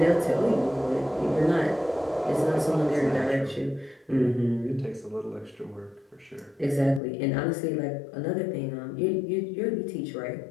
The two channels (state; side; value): drops out; right; at 7.0 s